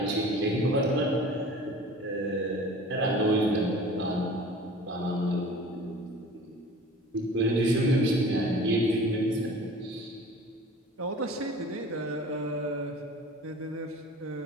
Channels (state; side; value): normal; both; correlation 0.43